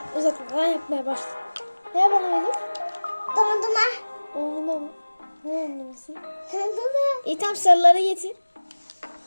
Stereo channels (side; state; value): both; inverted; correlation -1.00